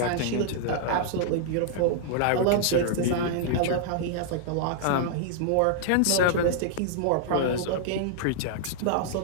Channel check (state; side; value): different; both; correlation -0.01